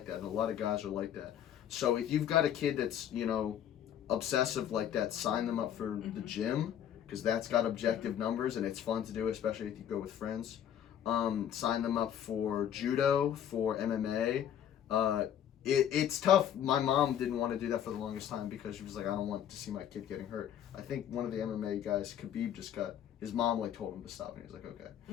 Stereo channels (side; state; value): right; quieter; 9.9 dB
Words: that, and a lot of guys are like that. So if you've got a kid that's obsessive like that, sign them up for the gym, because that's got objective numbers and it's fun to do, especially if you go with friends. Sign them up for judo, for MMA. It's tough. My mom didn't want to do that for the longest time because she was like, I don't want to see my kid getting hurt. I think one of the MMA guys, Khabib, his mom told him to stop, and he was like, okay.